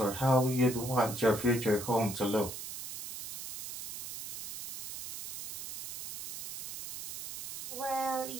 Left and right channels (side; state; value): right; noise; hiss, 6 dB below the sound